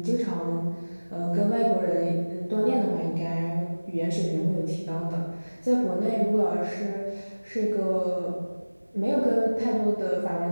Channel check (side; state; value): both; inverted; correlation -1.00